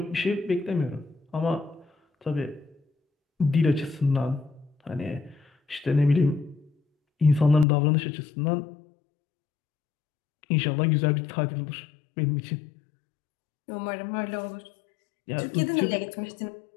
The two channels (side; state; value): right; drops out; at 7.7 s